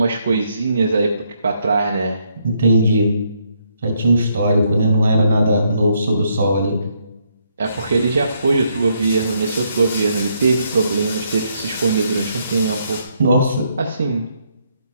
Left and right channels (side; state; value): both; inverted; correlation -0.74